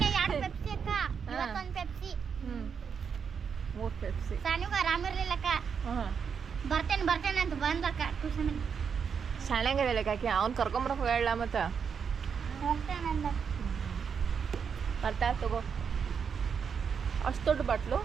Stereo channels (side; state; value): left; quieter; 6.6 dB